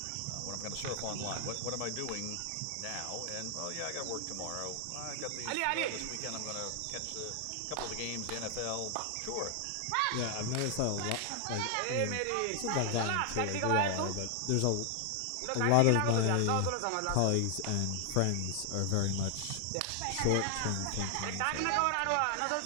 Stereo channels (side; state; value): both; different; correlation 0.00